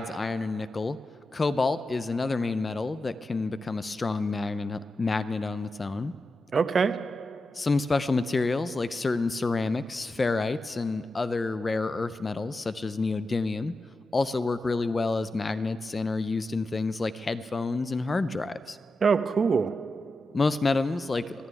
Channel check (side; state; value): both; normal; correlation 0.90